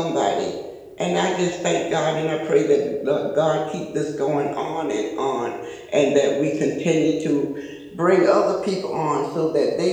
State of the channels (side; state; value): both; identical; correlation 1.00